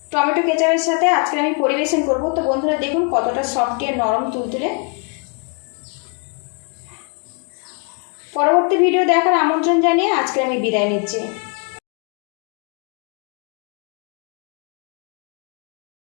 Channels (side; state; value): right; quieter; 38.2 dB